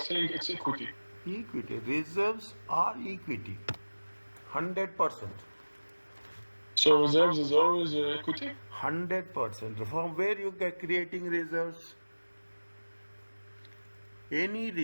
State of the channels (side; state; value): both; inverted; correlation -1.00